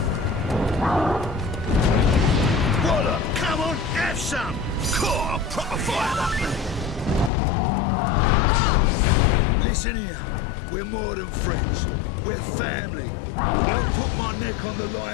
Water, come on, have some! Core, proper fire up there! Listen here. We're more than friends. We're family. I'll put my neck on the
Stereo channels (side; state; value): right; drops out; at 7.3 s